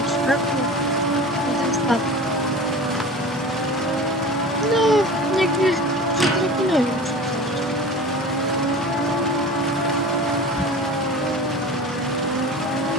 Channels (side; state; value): both; normal; correlation 0.36